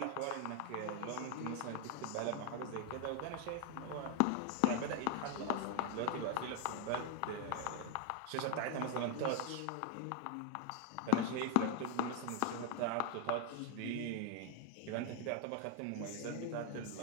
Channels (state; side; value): different; both; correlation 0.01